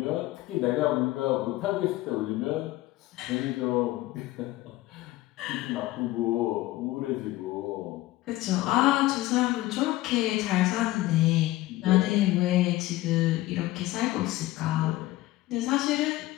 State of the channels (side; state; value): right; quieter; 17.4 dB